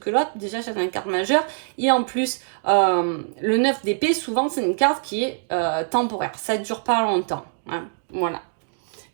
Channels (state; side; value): silent; left; digital silence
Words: l'autre. Déjà, c'est une carte majeure. Et en plus, le 9 d'épée, souvent, c'est une carte qui est temporaire. Ça ne dure pas longtemps. Voilà.